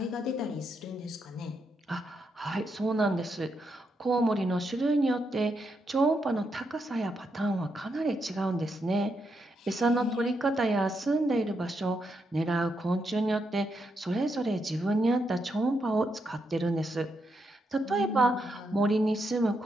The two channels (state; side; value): normal; both; correlation 0.81